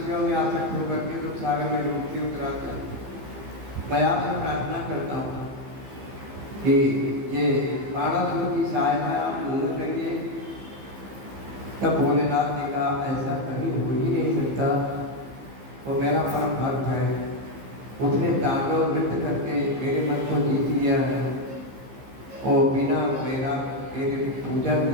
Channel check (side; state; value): left; late; 15 ms